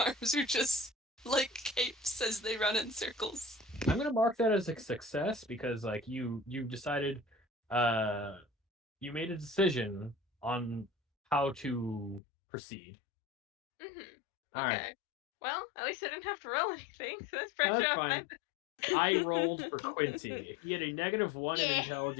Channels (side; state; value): right; drops out; at 12.2 s